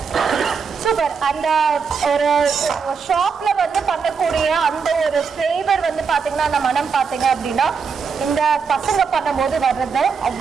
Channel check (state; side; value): quieter; left; 5.8 dB